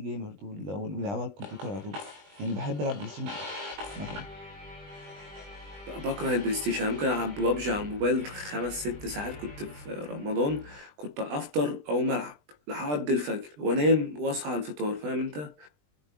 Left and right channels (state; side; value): late; left; 20 ms